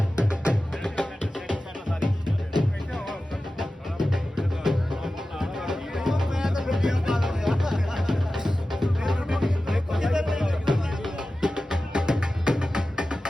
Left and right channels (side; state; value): both; normal; correlation 0.94